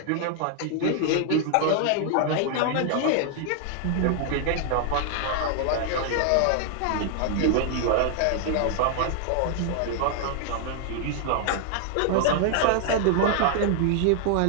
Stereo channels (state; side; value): different; both; correlation 0.00